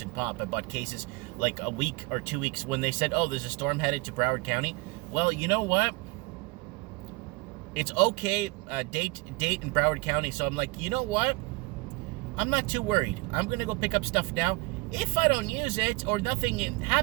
and pop. I bought cases like a week or 2 weeks when they said, oh, there's a storm headed to Broward County. Well, you know what? It's okay, date in Broward County. So I'm like, you know what? I'm not too worried. I'm going to go pick up stuff now. If I don't use it or nothing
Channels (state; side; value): quieter; left; 24.3 dB